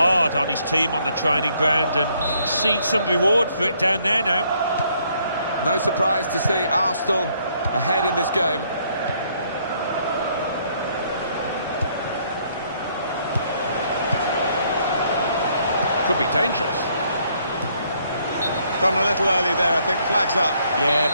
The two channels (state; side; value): inverted; both; correlation -0.68